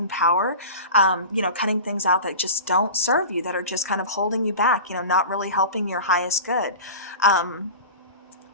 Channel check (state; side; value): inverted; both; correlation -0.33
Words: power, cutting things out that just don't serve you, that are just kind of holding you back, not really helping your highest good. I